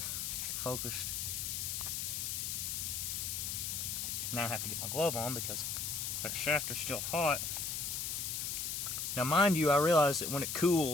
focused. Now I have to get my glove on because that shaft is still hot. Now, mind you, I realize that when it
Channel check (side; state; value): left; noise; hiss, 2 dB below the sound